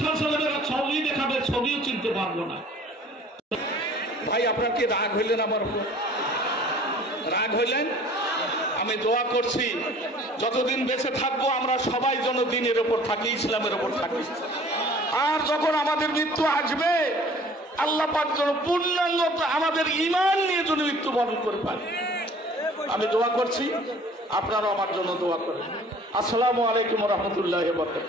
সাল্লাল্লাহু ছবি দেখাবে ছবিও চিনতে পারবো না ভাই আপনার কি রাগ হইলেন আমার উপর রাগ হইলেন আমি দোয়া করছি যতদিন বেঁচে থাকবো আমরা সবাই যেন দ্বীনের উপর থাকি ইসলামের উপর থাকি আর যখন আমাদের মৃত্যু আসবে আল্লাহ পাক যেন পূর্ণাঙ্গ আমাদের ঈমান নিয়ে যেন মৃত্যুবরণ করে পারে আমি দোয়া করছি আপনারাও আমার জন্য দোয়া করেন আসসালামু আলাইকুম ওয়া রাহমাতুল্লাহি ওয়া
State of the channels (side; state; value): both; normal; correlation 0.50